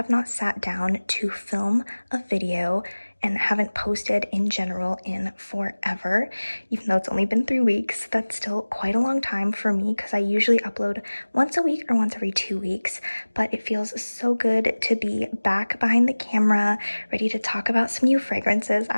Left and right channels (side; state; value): both; inverted; correlation -1.00